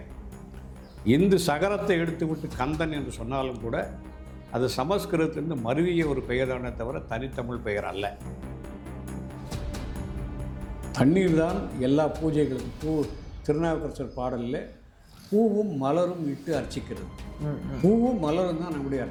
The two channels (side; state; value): both; identical; correlation 1.00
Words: இந்து சகரத்தை எடுத்துவிட்டு கந்தன் என்று சொன்னாலும் கூட அது சமஸ்கிருதத்திலிருந்து மருவிய ஒரு பெயர்தானே தவிர தனித்தமிழ் பெயர் அல்ல. தண்ணீர் தான் எல்லா பூஜைகளுக்கும் திருநாவுக்கரசர் பாடலில் பூவும் மலரும் இட்டு அர்ச்சிக்கிறது. பூவும் மலரும் தான் நம்முடைய